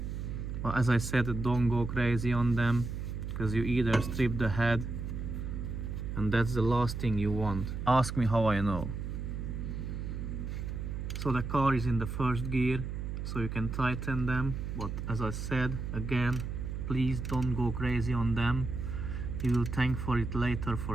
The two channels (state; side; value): noise; right; hum, 5 dB below the sound